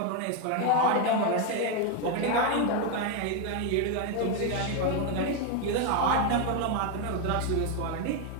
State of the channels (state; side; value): different; both; correlation 0.02